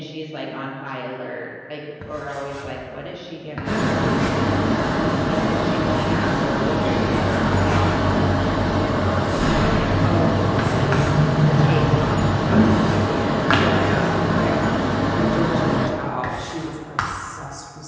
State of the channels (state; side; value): identical; both; correlation 1.00